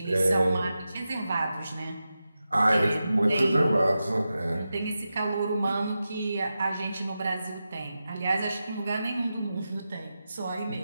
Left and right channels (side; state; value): both; inverted; correlation -0.91